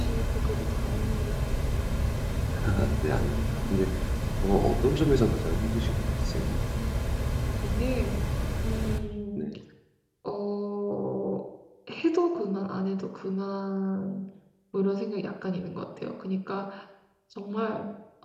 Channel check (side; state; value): both; identical; correlation 1.00